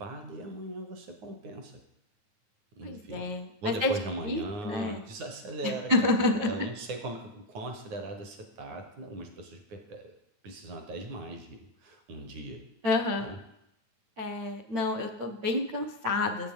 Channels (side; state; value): left; late; 9.6 ms